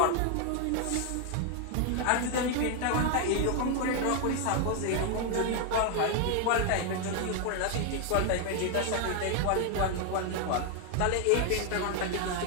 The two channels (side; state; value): both; different; correlation 0.01